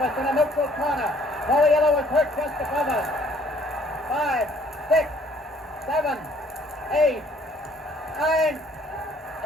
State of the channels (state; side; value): normal; both; correlation 0.60